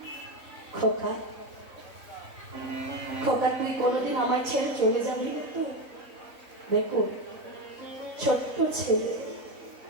খোকা, খোকা, তুই কোনোদিন আমায় ছেড়ে চলে যাবি না তো? দেখো, ছোট্ট ছেলে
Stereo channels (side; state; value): left; late; 3.7 ms